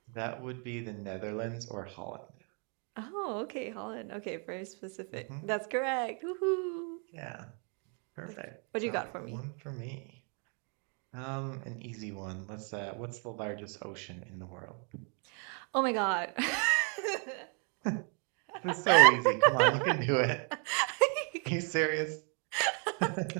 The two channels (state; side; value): quieter; left; 38.8 dB